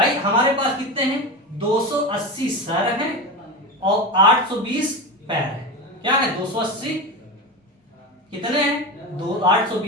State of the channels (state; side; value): normal; both; correlation 0.22